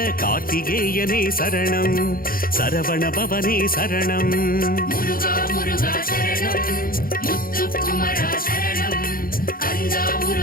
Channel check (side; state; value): right; late; 0.42 ms